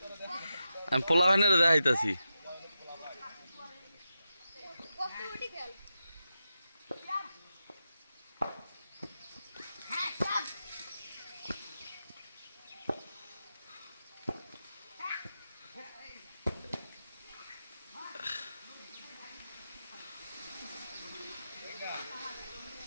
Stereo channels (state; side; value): inverted; both; correlation -0.90